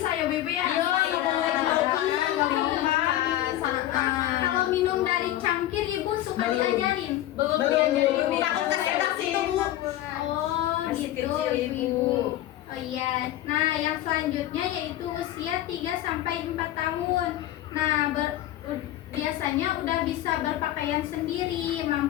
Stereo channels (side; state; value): right; quieter; 13.9 dB